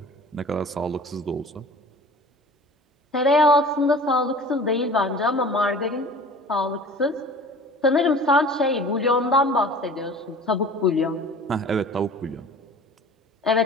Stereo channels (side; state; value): both; normal; correlation 0.43